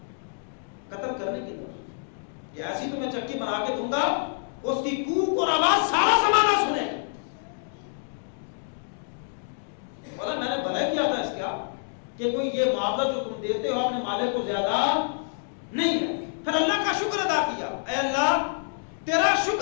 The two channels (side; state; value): right; silent; digital silence